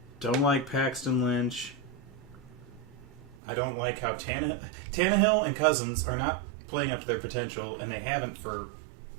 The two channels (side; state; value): left; drops out; at 3.4 s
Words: don't like Paxton Lynch. I don't like how Tannehill and Cousins are not playing up to their potential, and they haven't for